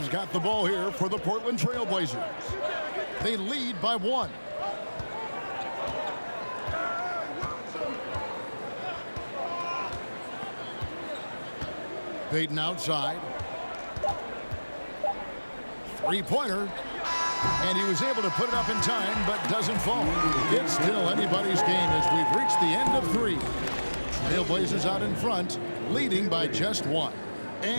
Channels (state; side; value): inverted; both; correlation -1.00